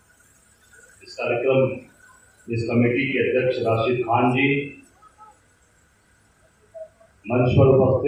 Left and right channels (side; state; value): both; identical; correlation 1.00